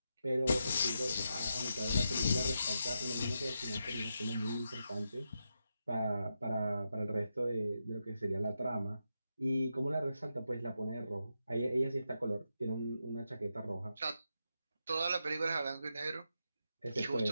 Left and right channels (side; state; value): both; inverted; correlation -0.85